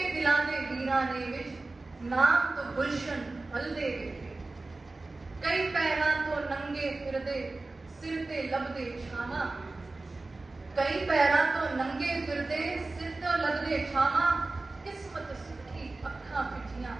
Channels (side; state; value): left; quieter; 3.3 dB